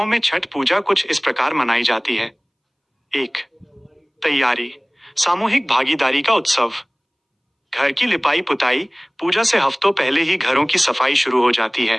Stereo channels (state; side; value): identical; both; correlation 1.00